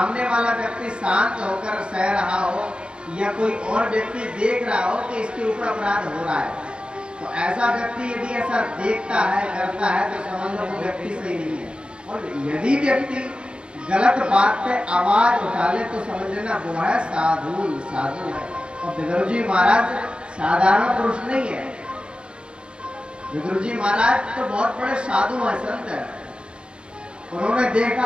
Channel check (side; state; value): left; late; 0.056 ms